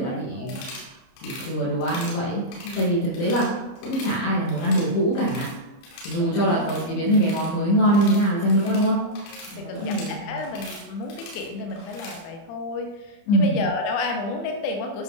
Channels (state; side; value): late; right; 30 ms